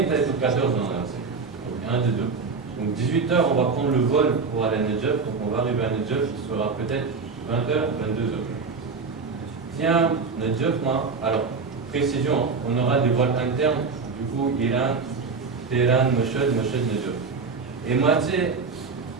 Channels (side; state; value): left; quieter; 4.8 dB